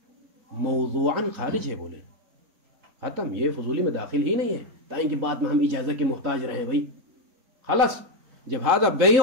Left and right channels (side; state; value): left; late; 4.1 ms